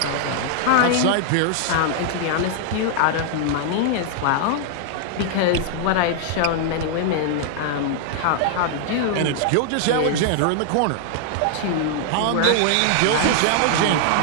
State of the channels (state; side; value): different; both; correlation 0.00